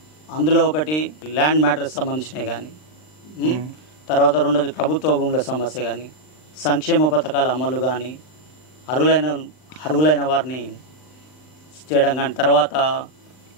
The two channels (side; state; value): right; late; 39 ms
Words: అందులో ఒకటి ల్యాండ్ మ్యాటర్స్ సంబంధించినవి కానీ, తర్వాత రెండోది ప్రభుత్వ భూముల సమస్య కానీ, సంక్షేమ పథకాల అమలు కానీ, అర్హులైన వారిని చేయడం కానీ, తర్వాత